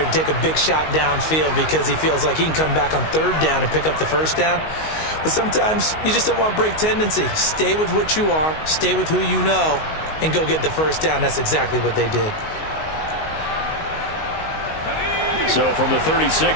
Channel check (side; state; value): right; late; 19 ms